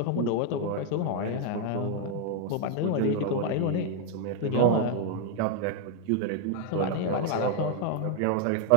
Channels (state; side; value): different; both; correlation 0.00